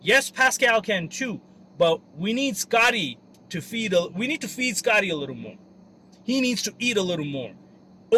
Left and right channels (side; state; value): both; identical; correlation 1.00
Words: Yes, Pascal can too, but we need Scottie to feed. We need to feed Scottie a little more. He needs to eat a little more.